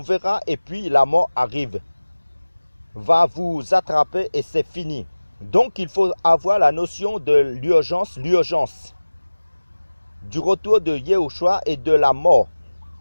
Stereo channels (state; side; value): inverted; both; correlation -1.00